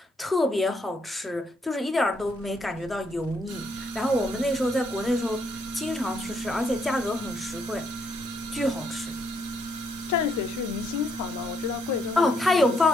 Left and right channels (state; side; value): normal; both; correlation 0.73